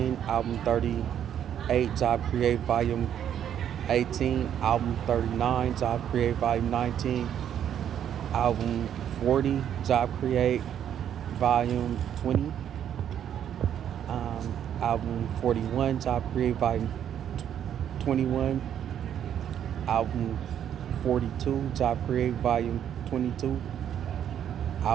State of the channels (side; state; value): left; quieter; 9.6 dB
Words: album 38, Job Create, volume 18, album 39, Job Create, volume 19, album 40, Job Create, volume 20, album 41, Job Create, volume 21, album 42, Job Create Volume 22.